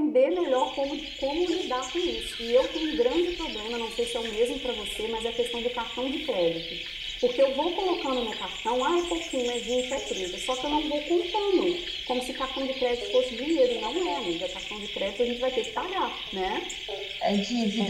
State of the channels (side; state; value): both; identical; correlation 1.00